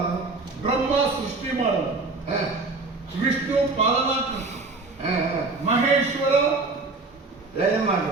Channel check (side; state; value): left; quieter; 3.7 dB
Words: ಬ್ರಹ್ಮ ಸೃಷ್ಟಿ ಮಾಡೋದು, ವಿಷ್ಣು ಪಾಲನಾಕರ್ತ, ಮಹೇಶ್ವರ ಲಯ